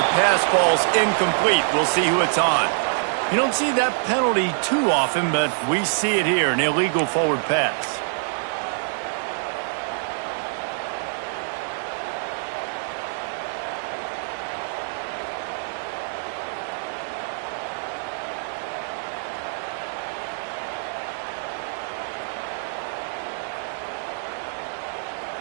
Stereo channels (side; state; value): left; silent; digital silence